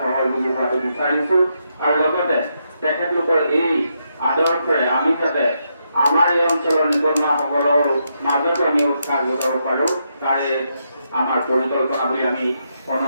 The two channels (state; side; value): inverted; both; correlation -0.81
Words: সহযোগী হোৱাটো বিচাৰিছোঁ আৰু লগতে তেখেতলোকৰ এই আদৰ্শৰে আমি যাতে আমাৰ এই অঞ্চলৰ নিবনুৱাসকলৰ মাজতো আমি উৎসাহ যোগাব পাৰোঁ, তাৰে আমাৰ পৰিকল্পনা বুলি আমি